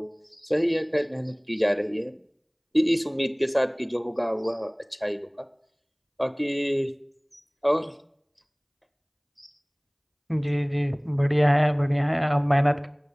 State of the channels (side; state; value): both; identical; correlation 1.00